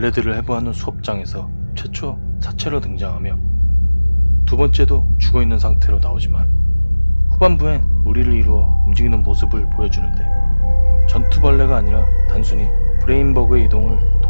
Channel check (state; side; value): inverted; both; correlation -1.00